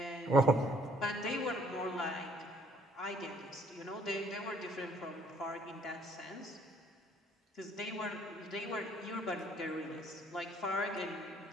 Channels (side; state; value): both; normal; correlation 0.62